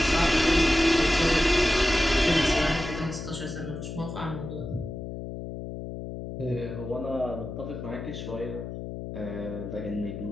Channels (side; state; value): left; noise; hum, 8 dB below the sound